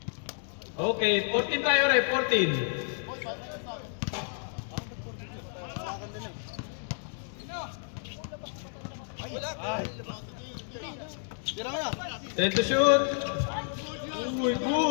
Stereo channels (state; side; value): silent; right; digital silence